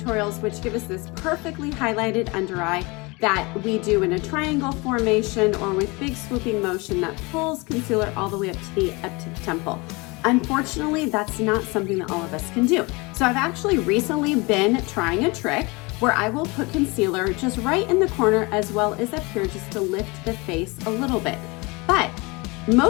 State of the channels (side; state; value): right; quieter; 26.1 dB